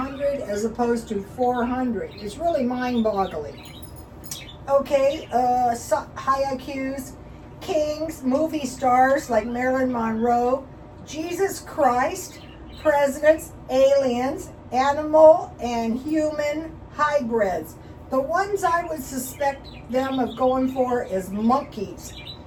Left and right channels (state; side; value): identical; both; correlation 1.00